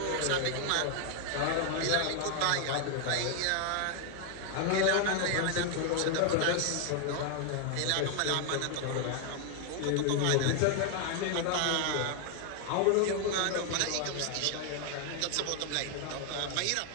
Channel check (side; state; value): both; different; correlation 0.00